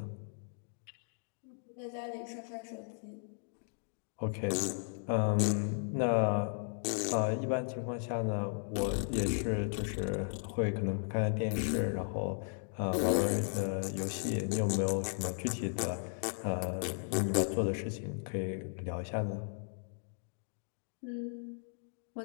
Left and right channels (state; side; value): silent; right; digital silence